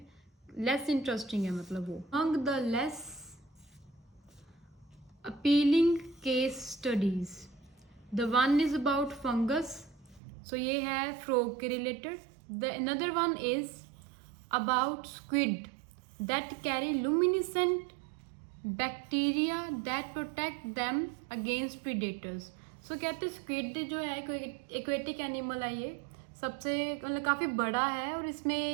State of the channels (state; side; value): drops out; left; at 10.2 s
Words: लेस इंटरेस्टिंग है मतलब वो। Among the less appealing case studies, the one is about fungus, so ये है फ्रॉग के related. The another one is about squid that carry luminescent bacteria that protect them against predators. So कहते हैं स्क्विड जो है एक्वेटिक एनिमल है, ये सबसे मतलब काफ़ी बड़ा है और